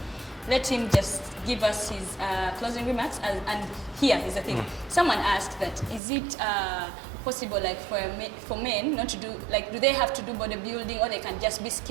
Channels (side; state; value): left; drops out; at 6.0 s